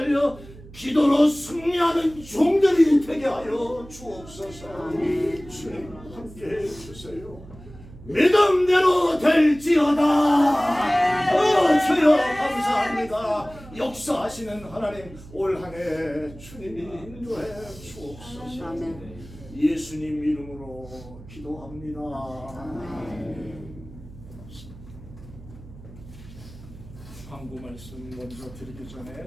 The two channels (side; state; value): right; noise; hum, 18 dB below the sound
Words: 기도로 승리하는 종들이 되게 하여 주옵소서. 주님 함께해 주세요. 믿음대로 될지어다. 주여 감사합니다. 역사하시는 하나님 올 한 해 주님이 인도해 주옵소서. 예수님 이름으로 기도합니다. 광고 말씀 먼저 드리기 전에